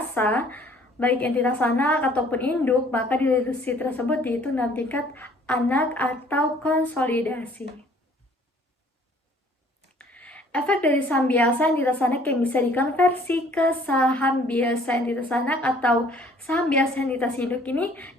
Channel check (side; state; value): both; normal; correlation 0.57